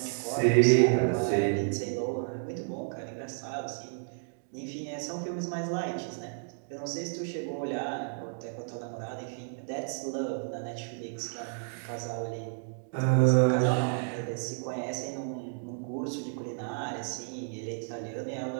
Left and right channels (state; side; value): silent; left; digital silence